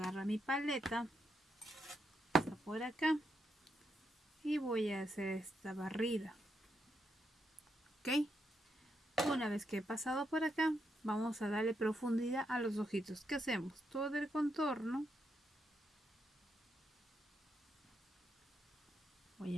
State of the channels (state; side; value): normal; both; correlation 0.81